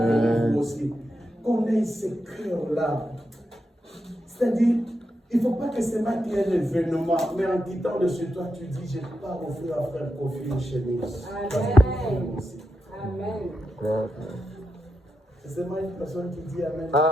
Vous aussi. Qu'on ait ces cœurs-là. C'est-à-dire, il ne faut pas que c'est moi qui ait l'événement, mais en quittant de chez toi, tu dis, je pars offrir à frère Kofi une chemise. Amen. Amen. C'est moi une personne qui dit Amen.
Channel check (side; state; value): both; normal; correlation 0.86